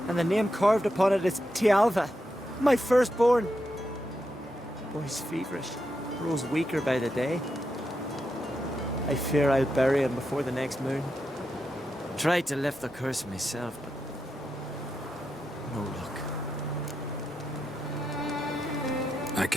And the name carved upon it is Tialva, my firstborn. Boy's feverish, grows weaker by the day. I fear I'll bury him before the next moon. Tried to lift the curse myself, but no luck. I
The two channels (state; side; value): normal; both; correlation 0.85